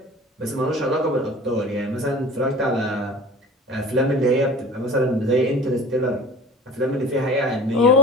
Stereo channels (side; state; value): both; normal; correlation 0.41